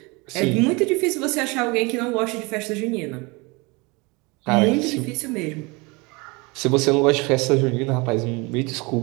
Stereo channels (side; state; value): left; quieter; 26.8 dB